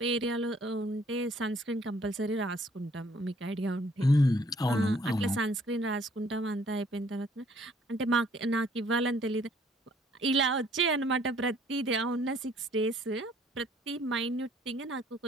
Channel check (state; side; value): normal; both; correlation 0.61